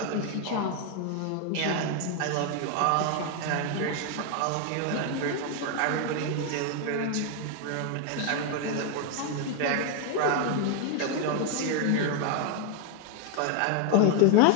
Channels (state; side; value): different; both; correlation 0.01